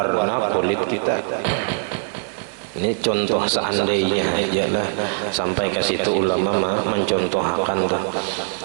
kulit kita. Ini contoh seandainya aja lah, sampai ke situ ulama mencontohkan tuh.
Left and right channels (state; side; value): silent; left; digital silence